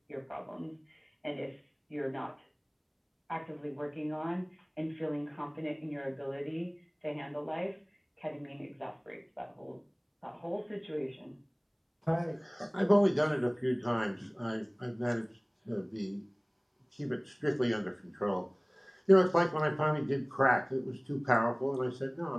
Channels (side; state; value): both; identical; correlation 1.00